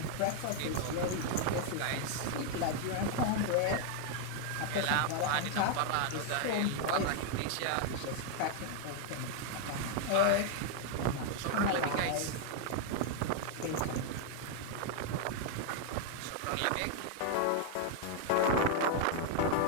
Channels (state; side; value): different; both; correlation 0.00